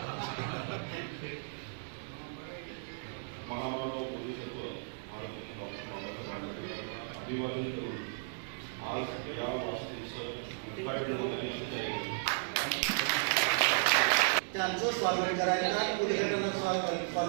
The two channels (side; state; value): left; silent; digital silence